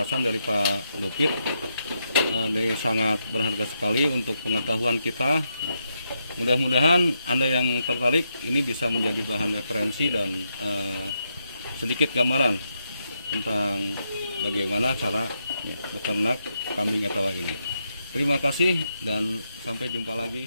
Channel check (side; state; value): both; inverted; correlation -0.81